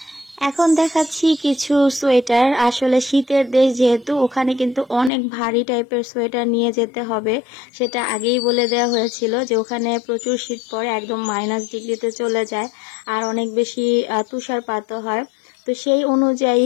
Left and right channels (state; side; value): drops out; right; at 5.1 s